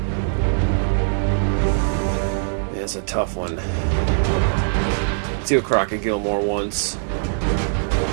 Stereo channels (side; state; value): left; silent; digital silence